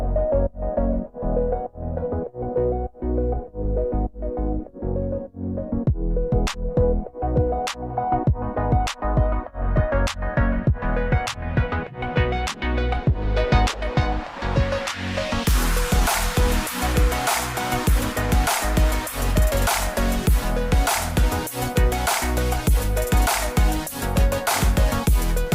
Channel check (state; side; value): identical; both; correlation 1.00